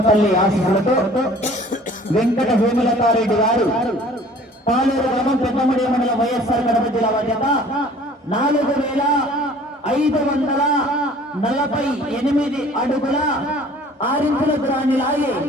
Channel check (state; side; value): normal; both; correlation 0.51